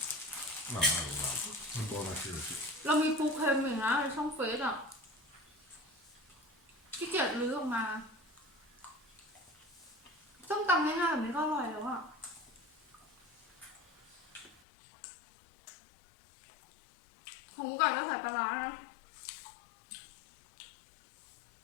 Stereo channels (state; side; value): drops out; right; at 14.6 s